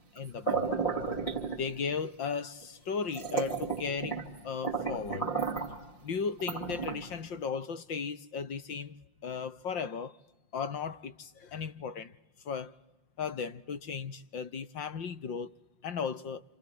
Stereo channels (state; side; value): late; right; 5.7 ms